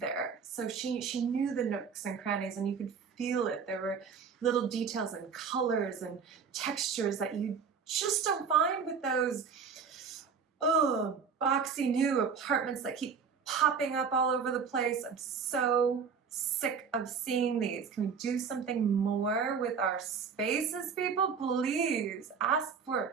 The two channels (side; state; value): left; quieter; 6.1 dB